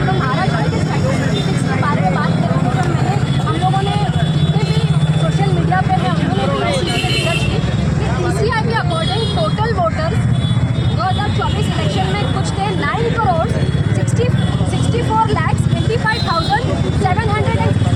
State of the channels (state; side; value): identical; both; correlation 1.00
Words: तो महाराष्ट्र के स्टैटिस्टिक्स के बारे में बात करेंगे। तो मैंने हम लोगों ने जितने भी सोशल मीडिया पे है उन्होंने भी इसी पे रिसर्च की कि PCI के अकॉर्डिंग टोटल वोटर्स 2024 इलेक्शन में कुछ थे 9,64,85,700।